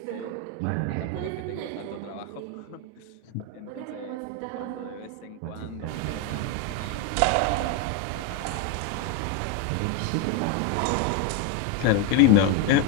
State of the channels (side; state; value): both; different; correlation 0.02